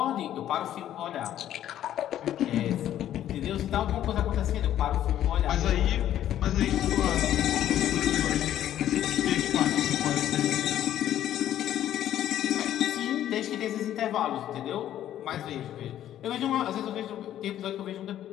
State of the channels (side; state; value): right; quieter; 11.7 dB